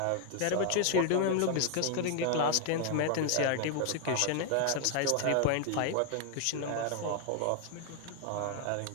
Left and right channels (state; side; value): different; both; correlation 0.00